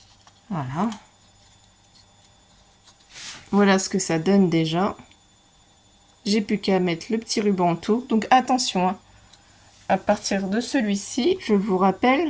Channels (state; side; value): identical; both; correlation 1.00